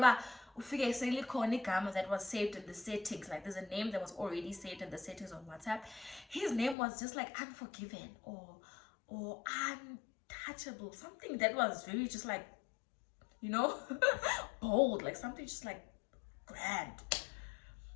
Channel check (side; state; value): right; drops out; at 6.8 s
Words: was saved in the settings. Like there's a name that was already saved in the settings on WhatsApp. His name was just like Unforgiven or Untouchable, something that was very just like, you know, bold, like something just like grand.